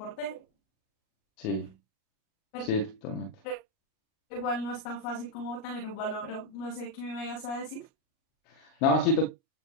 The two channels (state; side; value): late; right; 38 ms